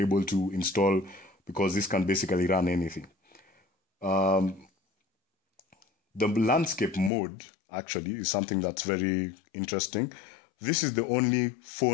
to install because this can basically run anything. The landscape mode actually is something that's very interesting. This is the only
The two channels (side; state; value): right; drops out; at 7.1 s